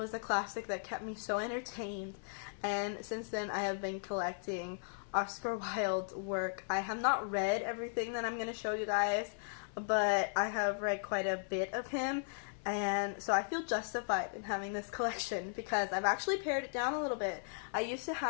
a classic that kept me so entertained, and since then I have been collecting Oscar Wilde's work. I have not read everything that I'm going to show you guys, but I have read quite a bit of him, and so I feel justified in having this collection because I've actually pared it down a little bit. I used to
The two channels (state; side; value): silent; right; 53 dB below the other